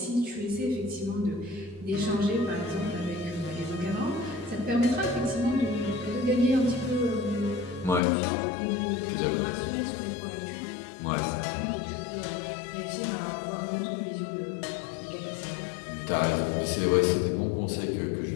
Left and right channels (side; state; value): right; drops out; at 8.0 s